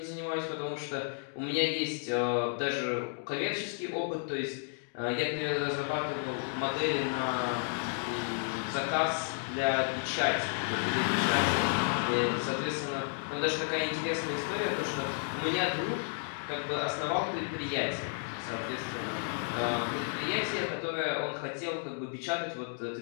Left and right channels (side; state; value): right; silent; 56 dB below the other